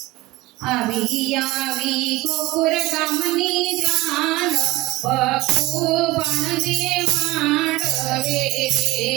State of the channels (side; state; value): left; quieter; 19.7 dB